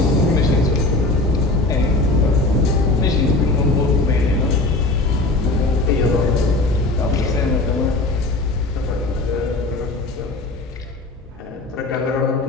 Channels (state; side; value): quieter; right; 3.1 dB